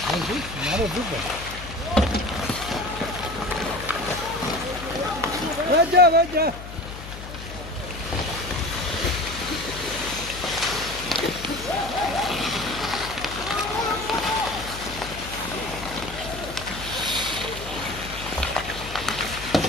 Анди нараа зүг. Ваджа.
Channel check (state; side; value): noise; left; hum, 11 dB below the sound